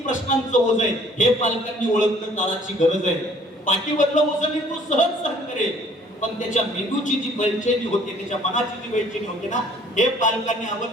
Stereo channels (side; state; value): both; normal; correlation 0.56